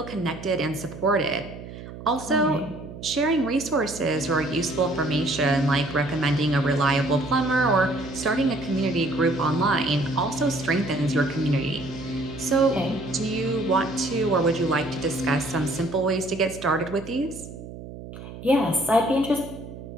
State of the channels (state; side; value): noise; right; hum, 13 dB below the sound